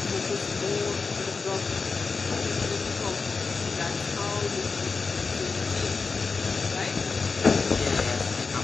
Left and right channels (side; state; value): right; quieter; 4.5 dB